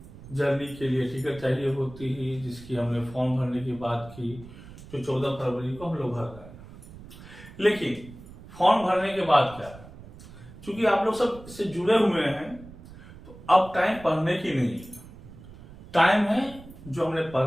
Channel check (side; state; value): right; noise; rumble, 17 dB below the sound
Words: जर्नी के लिए टिकट चाहिए होती ही, जिसकी हमने फॉर्म भरने की बात की, जो 14 फरवरी को हम लोग भर रहे हैं। लेकिन फॉर्म भरने के बाद क्या है, चूंकि आप लोग सब इससे जुड़े हुए हैं तो अब टाइम पढ़ने की नहीं है, टाइम है जो हमने